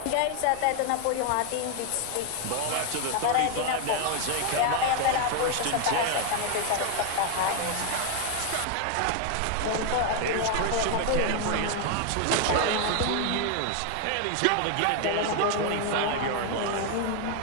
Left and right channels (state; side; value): different; both; correlation 0.00